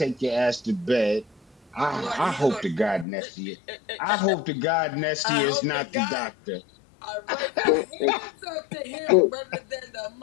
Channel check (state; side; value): drops out; right; at 3.1 s